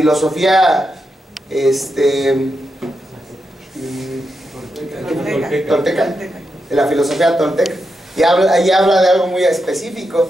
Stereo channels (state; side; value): normal; both; correlation 0.86